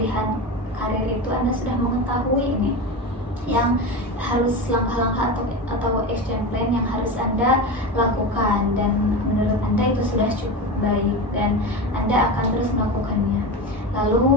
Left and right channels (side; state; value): both; normal; correlation 0.23